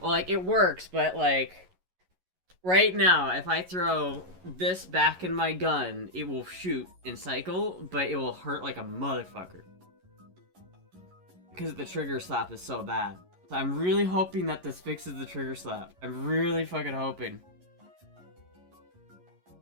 Well, like, it works, but, like... Right now, if I throw this back in my gun, it will shoot and cycle, but it will hurt like a motherfucker. Because the trigger slap is so bad. So I'm really hoping that this fixes the trigger slap. I'm really fucking hoping.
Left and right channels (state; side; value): late; left; 11 ms